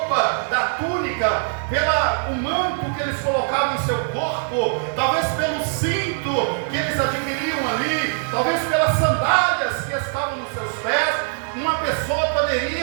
da túnica, pelo manto que eles colocavam em seu corpo, talvez pelo cinto que eles adquiriam ali, talvez pelas sandálias que estavam nos seus pés. Uma pessoa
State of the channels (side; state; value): left; silent; 60 dB below the other